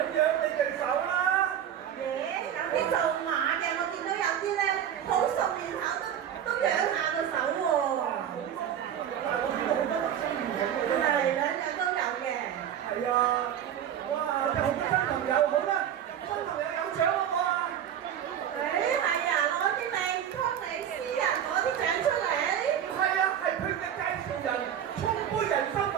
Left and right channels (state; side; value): quieter; left; 9.7 dB